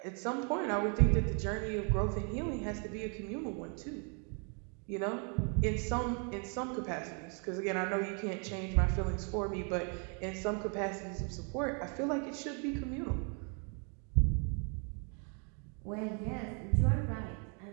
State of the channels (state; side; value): quieter; left; 38.3 dB